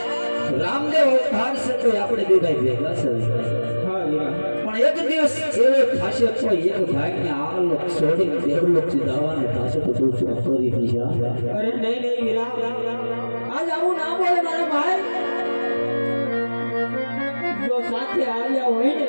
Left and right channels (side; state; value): both; inverted; correlation -1.00